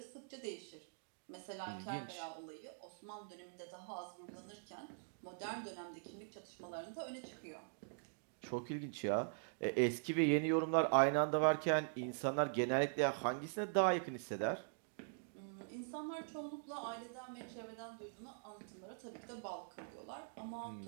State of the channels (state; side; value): silent; left; digital silence